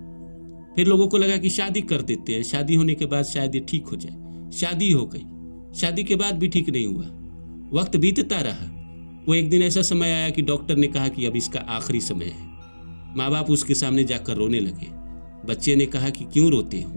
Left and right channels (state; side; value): inverted; both; correlation -1.00